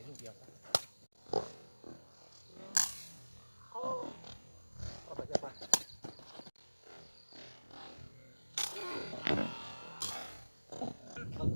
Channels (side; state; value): both; inverted; correlation -1.00